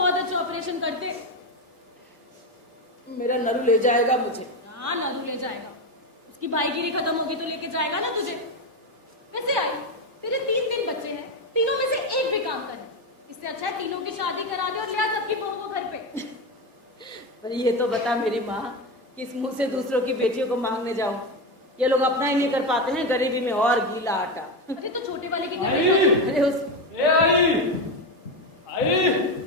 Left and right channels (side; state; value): both; normal; correlation 0.14